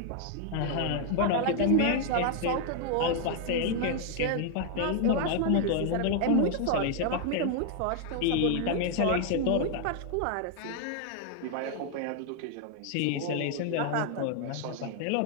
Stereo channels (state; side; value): different; both; correlation 0.00